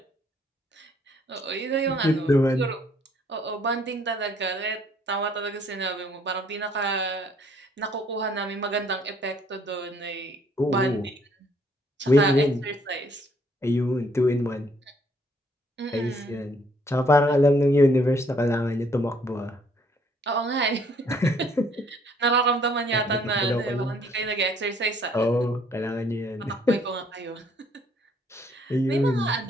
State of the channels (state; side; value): normal; both; correlation 0.65